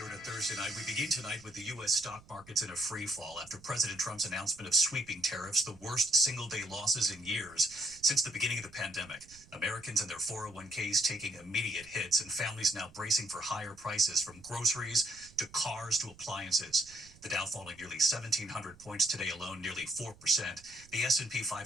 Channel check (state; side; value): noise; right; rumble, 23 dB below the sound